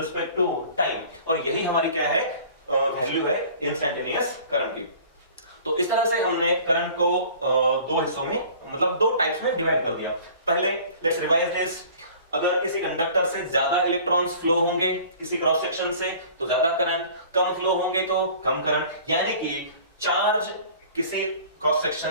to time. और यही हमारी क्या है, वैल्यू है इंस्टैन्टेनियस करंट की। तो इस तरह से हमने करंट को दो हिस्सों में, मतलब दो टाइप्स में डिवाइड कर दिया। पहले लेट्स रिवाइज दिस, अगर किसी कंडक्टर से ज्यादा इलेक्ट्रॉन्स फ्लो होंगे किसी क्रॉस सेक्शन से तो ज्यादा करंट, कम फ्लो होंगे तो कम करंट। यानी कि चार्ज किसी क्रॉस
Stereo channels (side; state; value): both; inverted; correlation -0.47